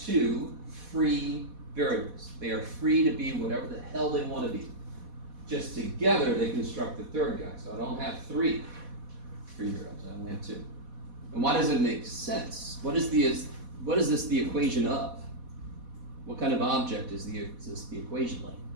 2 free variables? They are free to be whatever the hell they want to be. Just together they construct the third guy. So I don't have 3 free variables, I only have 2. And why does it make sense? What is this the equation of? What kind of object is this the equation like?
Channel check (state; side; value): late; left; 4.1 ms